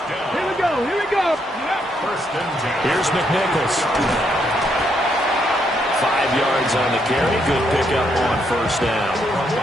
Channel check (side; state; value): both; normal; correlation 0.75